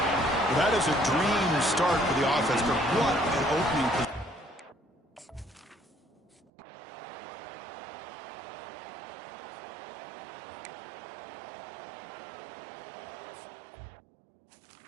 That is a dream start for the offense, but what an opening position.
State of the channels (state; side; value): drops out; left; at 6.5 s